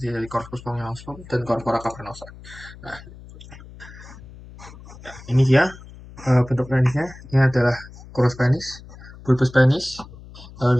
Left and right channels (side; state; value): left; noise; hum, 18 dB below the sound